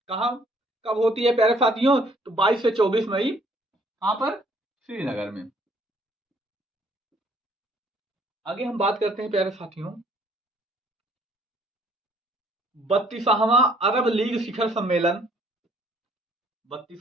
कहां कब होती है प्यारे साथियों? तो 22 से 24 मई। कहां पर? श्रीनगर में। आगे हम बात करते हैं प्यारे साथियों 32वां अरब लीग शिखर सम्मेलन,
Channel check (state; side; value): normal; both; correlation 0.62